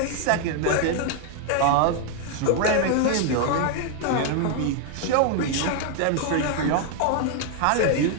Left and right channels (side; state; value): both; different; correlation 0.00